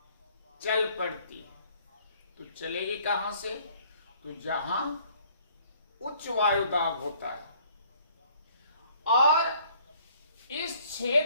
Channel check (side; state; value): both; inverted; correlation -0.59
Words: चल पड़ती है। तो चलेगी कहां से? तो जहां उच्च वायु दाब होता है, और इस